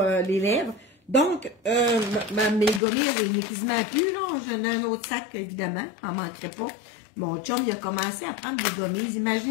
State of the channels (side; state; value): right; drops out; at 2.8 s